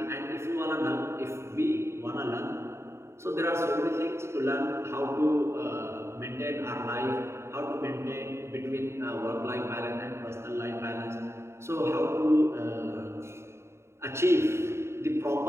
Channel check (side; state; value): left; late; 0.13 ms